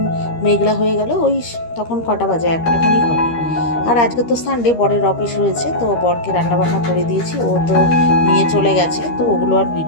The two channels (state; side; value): late; right; 13 ms